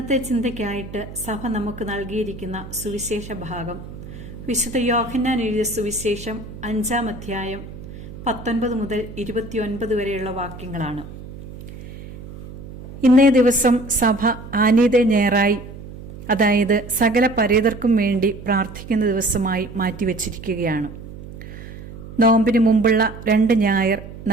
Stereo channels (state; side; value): noise; right; hum, 14 dB below the sound